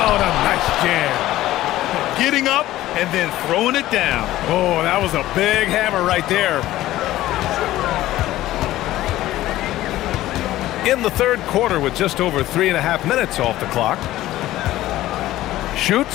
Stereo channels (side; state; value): right; quieter; 15.3 dB